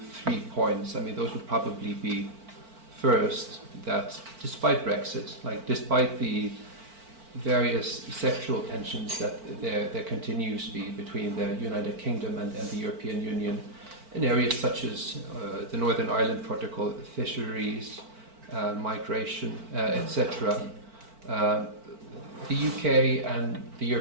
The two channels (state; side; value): late; left; 4.5 ms